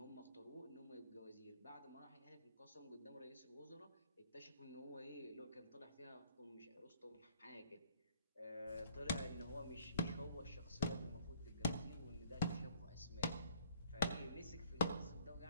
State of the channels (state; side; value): inverted; both; correlation -0.58